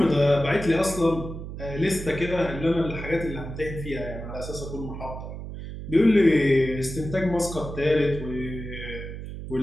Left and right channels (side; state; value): right; noise; hum, 9 dB below the sound